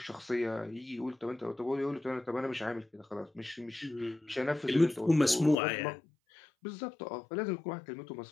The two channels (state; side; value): drops out; right; at 5.6 s